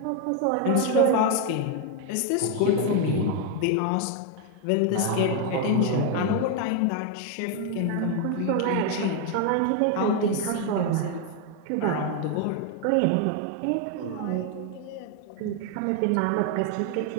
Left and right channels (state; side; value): different; both; correlation 0.01